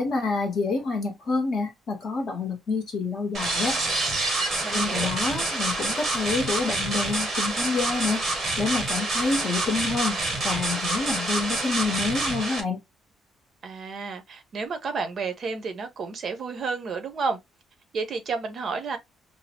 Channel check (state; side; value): normal; both; correlation 0.71